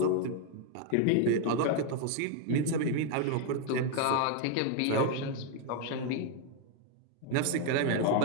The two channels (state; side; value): different; both; correlation 0.00